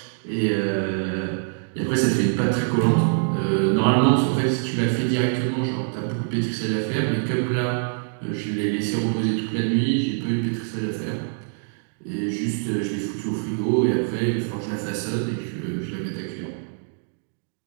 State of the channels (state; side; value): silent; left; 59 dB below the other